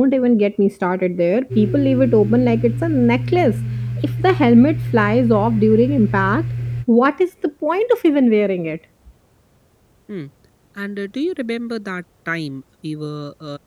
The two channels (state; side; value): identical; both; correlation 1.00